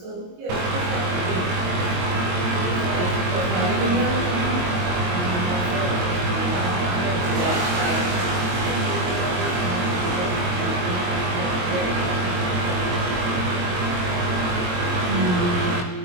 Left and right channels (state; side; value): late; left; 22 ms